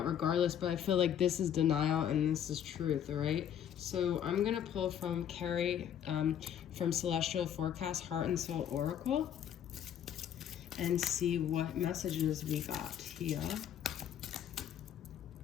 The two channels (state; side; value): quieter; right; 9.6 dB